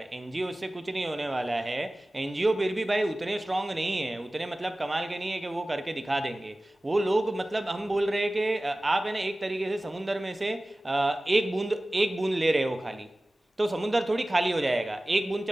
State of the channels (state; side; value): normal; both; correlation 0.97